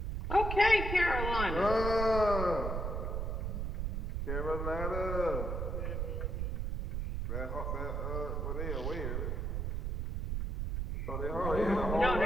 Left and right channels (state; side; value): noise; right; rumble, 2 dB below the sound